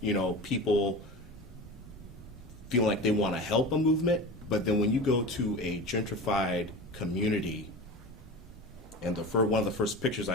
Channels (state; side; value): normal; both; correlation 0.32